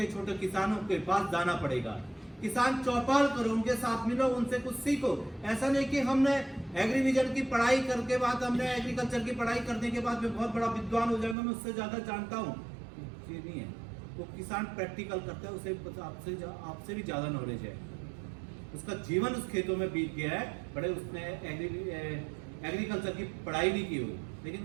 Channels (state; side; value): drops out; left; at 11.4 s